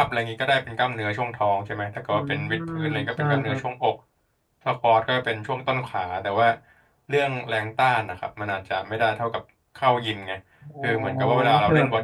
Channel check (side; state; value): both; identical; correlation 1.00